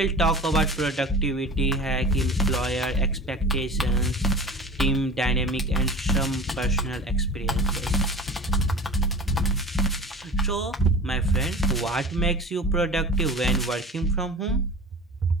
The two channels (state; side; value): normal; both; correlation 0.36